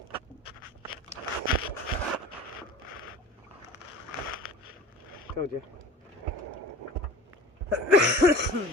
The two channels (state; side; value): normal; both; correlation 0.38